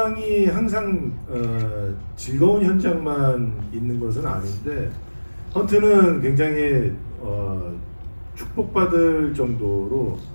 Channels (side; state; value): both; inverted; correlation -1.00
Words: 항상 즐거운 현장만 있는 것은 아닌데 헌트는 굉장히 축복받을 정도로